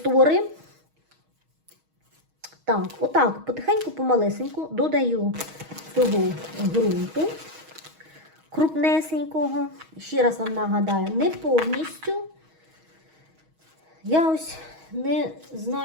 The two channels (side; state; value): left; late; 6.3 ms